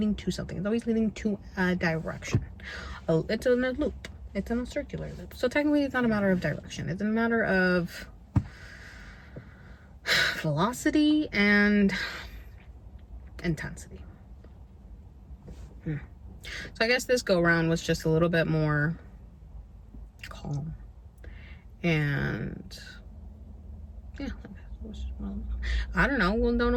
to something. It's always leading to a direction. It's in a loop. It's in a circular loop. So technically it's not a matter of direction. It's a matter of velocity and intensity. So I guess this go round was just a little bit more calm, and yeah, I don't know. We'll don't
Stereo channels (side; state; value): both; identical; correlation 1.00